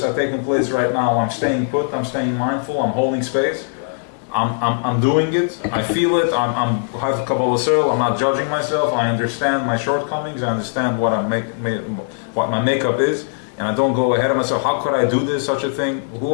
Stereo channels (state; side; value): silent; right; digital silence